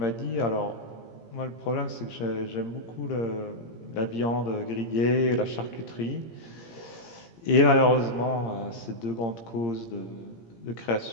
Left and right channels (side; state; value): right; late; 17 ms